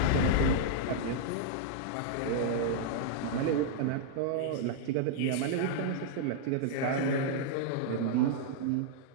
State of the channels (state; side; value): different; both; correlation -0.02